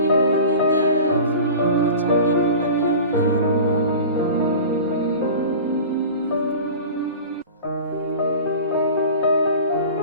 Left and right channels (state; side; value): inverted; both; correlation -0.36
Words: வந்து இந்த ஃபுல் சட்னிக்கும் நல்லா உள்ளே இறங்கும்.